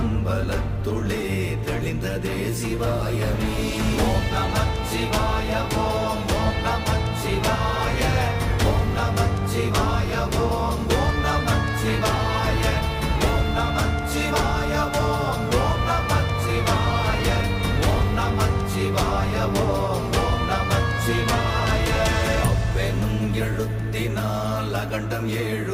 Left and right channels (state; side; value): identical; both; correlation 1.00